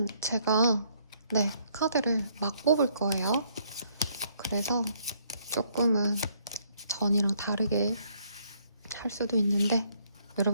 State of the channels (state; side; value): inverted; both; correlation -0.68